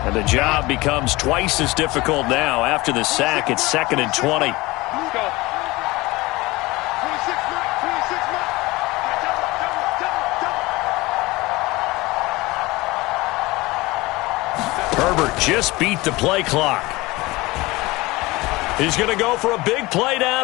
And the job becomes twice as difficult now. After the sack, it's 2nd and 20. Herbert just beat the play clock. He's going to go for a big play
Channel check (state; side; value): quieter; right; 21.4 dB